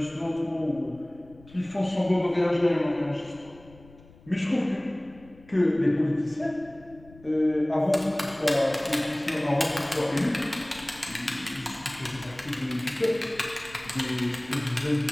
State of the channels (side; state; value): left; noise; rumble, 24 dB below the sound